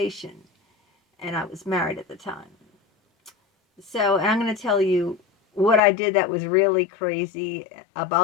And I was married at the time. So I'm going to tell you what I did that was really crazy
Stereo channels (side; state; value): right; drops out; at 5.8 s